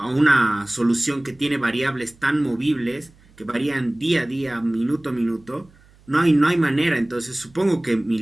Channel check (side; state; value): right; noise; hum, 29 dB below the sound